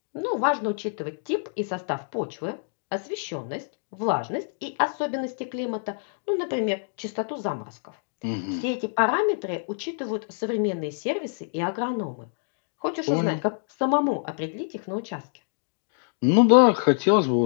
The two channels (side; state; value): right; silent; digital silence